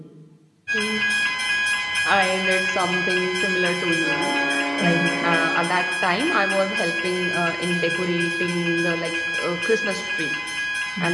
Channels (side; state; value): both; identical; correlation 1.00